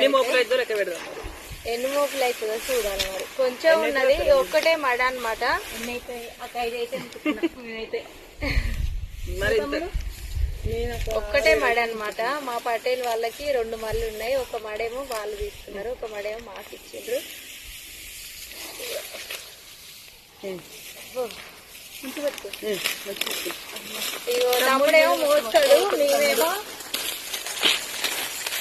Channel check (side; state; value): both; identical; correlation 1.00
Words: మోపులు అవుతుందో చూడాలి. మరి కొంచెం ఉన్నది, ఒక్కటే మడ అనమాట. ఒక్కటే మడ అనమాట. మా పటేల్ వాళ్ళకి 2 మళ్ళు ఉన్నాయి. ఒక మడేమో వాళ్ళు తీసుకున్నారు, ఒక మడేమో మాకు ఇచ్చిండ్రు. తమ్ముడేమో మోస్తాడు,